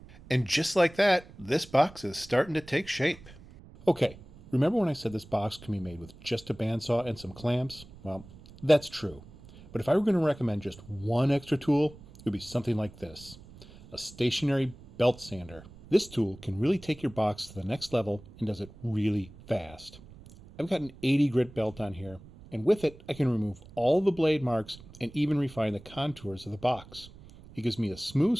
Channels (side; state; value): right; noise; rumble, 20 dB below the sound